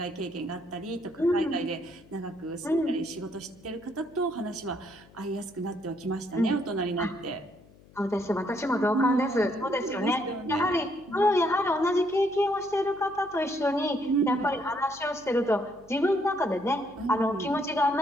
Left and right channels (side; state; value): left; noise; hum, 25 dB below the sound